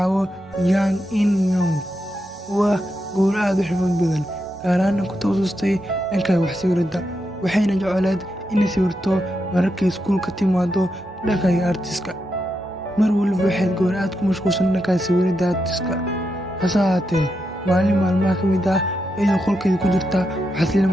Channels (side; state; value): both; normal; correlation 0.85